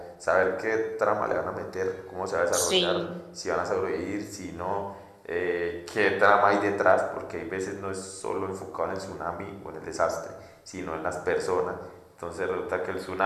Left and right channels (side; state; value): both; identical; correlation 1.00